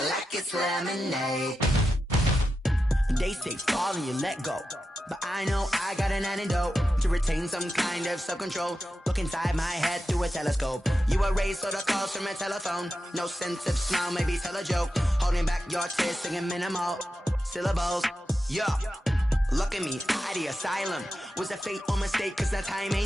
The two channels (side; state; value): both; normal; correlation 0.90